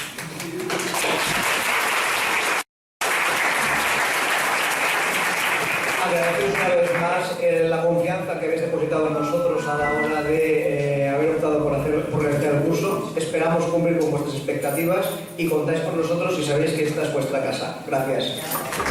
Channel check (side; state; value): both; identical; correlation 1.00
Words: Agradeceros una vez más la confianza que habéis depositado en nosotros a la hora de haber optado por realizar el curso. Esperamos cumplir con vuestras expectativas y contáis con nosotros si sabéis que esta es vuestra casa. Gracias.